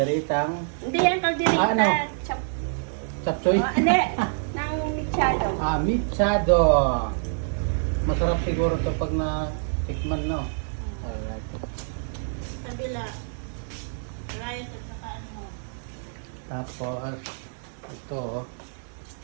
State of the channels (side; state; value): left; silent; digital silence